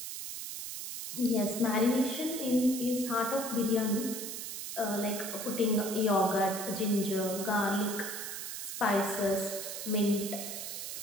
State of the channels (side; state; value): right; noise; hiss, 6 dB below the sound